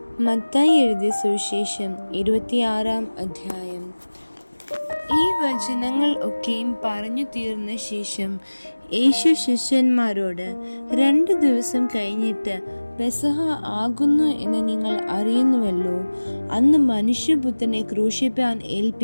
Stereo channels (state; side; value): inverted; both; correlation -1.00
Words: മത്തായി എഴുതിയ സുവിശേഷം 26-ാം അധ്യായം. ഈ വചനങ്ങൾ ഒക്കെയും പറഞ്ഞു തീർന്ന ശേഷം യേശു ശിഷ്യന്മാരോട്, 2 ദിവസം കഴിഞ്ഞിട്ട് പെസഹ ആകുന്നു എന്ന് നിങ്ങൾ അറിയുന്നുവല്ലോ. അന്ന് മനുഷ്യപുത്രനെ ക്രൂശിപ്പാൻ